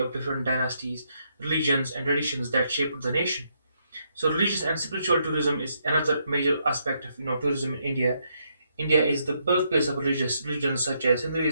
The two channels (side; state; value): both; inverted; correlation -0.76